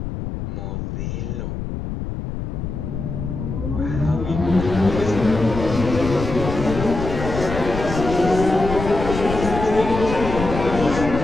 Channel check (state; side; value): noise; left; rumble, 6 dB below the sound